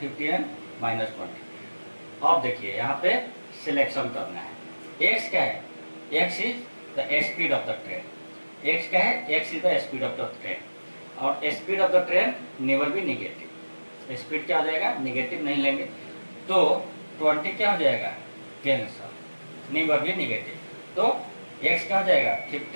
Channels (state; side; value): inverted; both; correlation -1.00